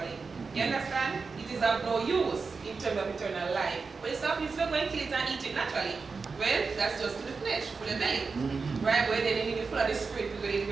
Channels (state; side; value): quieter; left; 4.7 dB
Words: You understand? It is of no use in terms of eternal life. But it's not going to kill it and eat it naturally. Well, that's just to the flesh, for the belly. Right? But then you need to full of the spirit